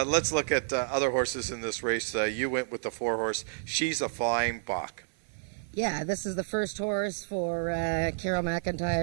look at other horses in this race. You went with the 4-horse. She's a Flying Bach. Yeah, this is the first horse for Carol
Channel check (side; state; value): left; silent; 56 dB below the other